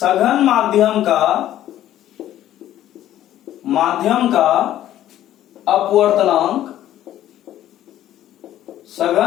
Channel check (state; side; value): quieter; right; 12.6 dB